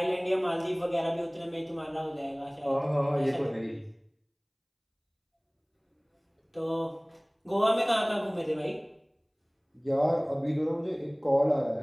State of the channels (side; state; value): both; identical; correlation 1.00